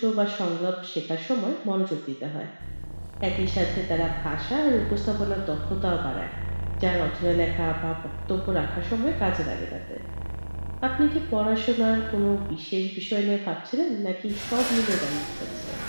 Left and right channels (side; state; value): both; inverted; correlation -1.00